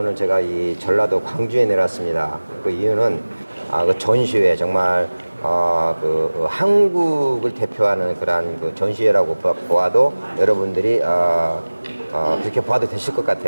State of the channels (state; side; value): inverted; both; correlation -1.00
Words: 제가 이 전라도 광주에 내렸습니다. 그 이유는 그 전시회 정말 한국을 대표하는 그런 그 전시회라고 보아도 여러분들이 그렇게 봐도 되실 것